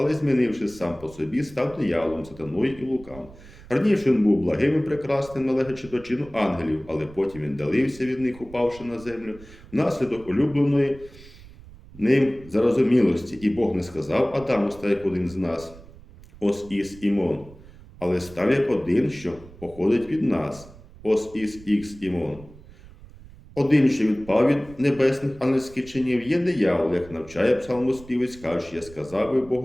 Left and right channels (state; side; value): noise; right; rumble, 20 dB below the sound